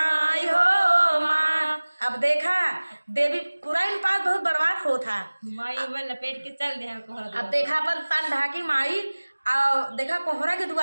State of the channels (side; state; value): both; inverted; correlation -1.00